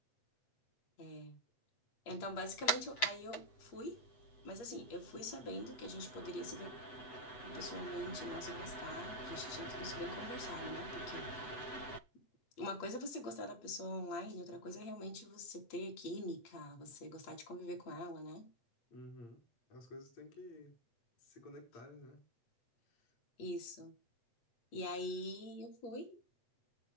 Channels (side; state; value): right; late; 8.0 ms